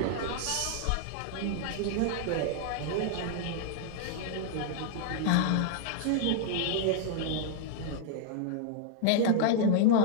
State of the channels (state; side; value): different; both; correlation 0.00